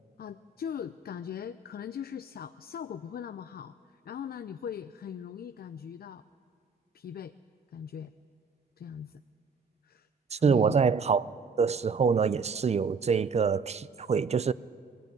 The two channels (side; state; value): left; quieter; 4.5 dB